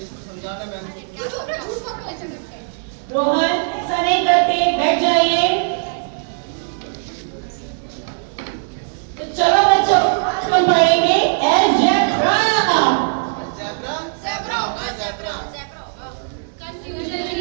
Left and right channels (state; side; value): silent; left; 62 dB below the other